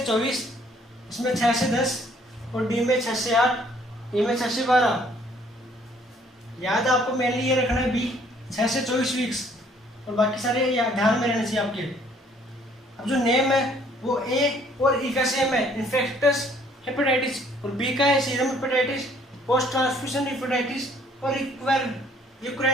24, इसमें 6 से 10 और डी में 6 से 8, ई में 6 से 12। याद आपको मेनली ये रखना है बी 6 से 24 वीक्स और बाकी सारे ध्यान में रहने चाहिए आपके। अब जो नेम है वो ए और ई का सेम है, इन्फेक्टस हेपेटाइटिस, और बी का है serum hepatitis, post transfusion hepatitis और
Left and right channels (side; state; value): both; normal; correlation 0.61